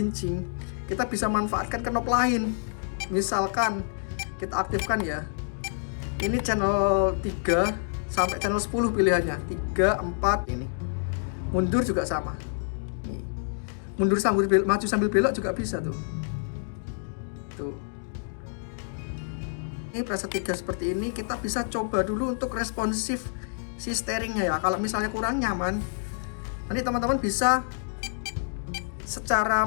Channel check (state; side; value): silent; right; digital silence